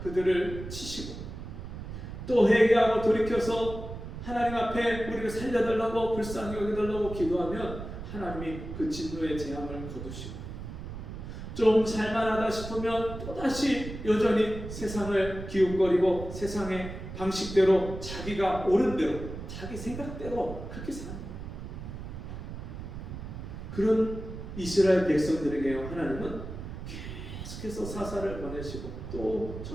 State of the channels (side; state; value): right; noise; rumble, 9 dB below the sound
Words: 그들을 치시고 또 회개하고 돌이켜서 하나님 앞에 우리를 살려달라고 불쌍히 여겨달라고 기도하면 하나님이 그 진노의 재앙을 거두시고 좀 살만하다 싶으면 또다시 여전히 세상을 기웃거리고 세상의 방식대로 자기가 옳은 대로 자기 생각대로 그렇게 사는 거예요. 그런 이스라엘 백성들에게 하나님은 계속해서 사사를 보내시고 또